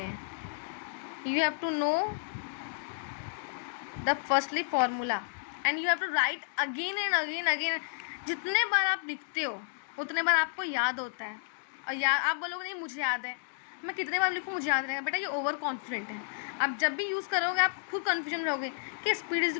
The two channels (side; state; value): right; silent; digital silence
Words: हैं. You have to know the firstly formula and you have to write again and again. जितने बार आप लिखते हो उतने बार आपको याद होता है. और आप बोलोगे नहीं मुझे याद है, मैं कितने बार लिखूँ मुझे याद रहेगा. बेटा ये ओवर कॉन्फिडेंट है. आप जब भी यूज़ करोगे आप खुद कन्फ्यूजन में रहोगे कि speed is